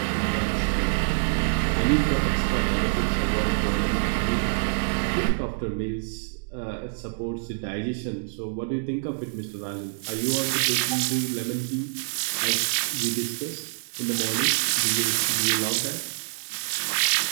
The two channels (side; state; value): left; silent; digital silence